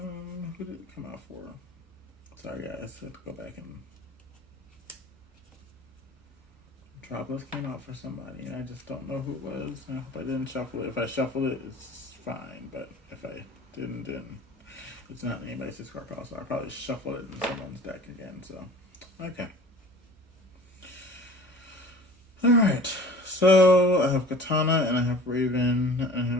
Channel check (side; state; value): both; normal; correlation 0.44